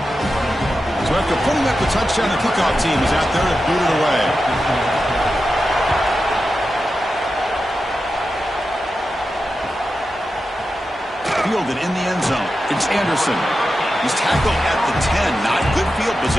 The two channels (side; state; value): both; normal; correlation 0.91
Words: So after putting up the touchdown, the kickoff team is out there to boot it away. Fielded in the end zone. It's Anderson. He's tackled at the 10. Not good field